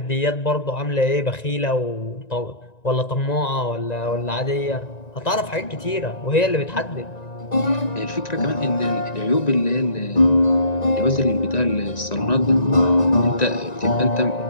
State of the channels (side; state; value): right; late; 1.9 ms